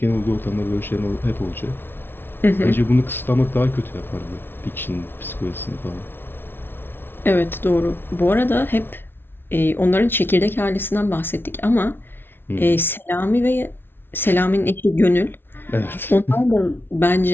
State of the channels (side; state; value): right; late; 0.11 ms